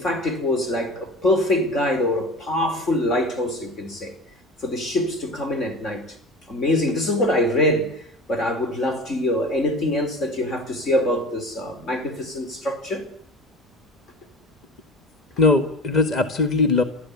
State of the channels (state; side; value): normal; both; correlation 0.34